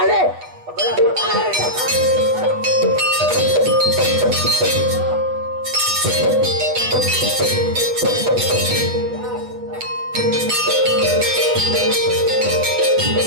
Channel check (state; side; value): late; left; 8.1 ms